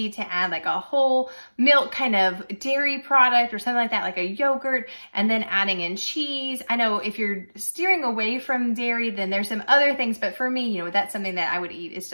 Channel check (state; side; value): inverted; both; correlation -1.00